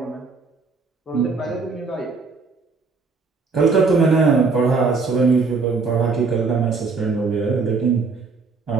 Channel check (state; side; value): quieter; left; 4.5 dB